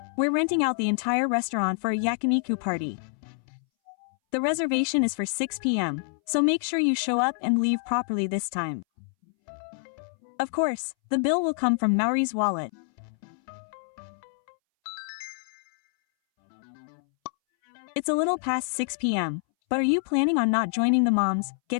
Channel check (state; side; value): silent; right; 60 dB below the other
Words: We're renting out the entire restaurant for a yakiniku party. The reservation is for 6 p.m., so make sure you show up and leave properly this time. Of course, the bill will come from Maori's wallet. It's a little past 6 p.m., but are you planning on not joining the moms